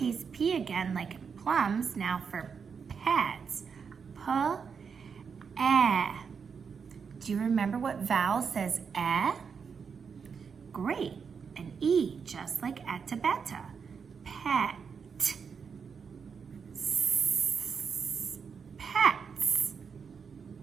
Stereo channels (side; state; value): left; quieter; 6.2 dB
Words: p again, like in plums. Now for pets. P-e. Do you remember what vowel says e? Great. An E, just like etabeta. Pet. Pets.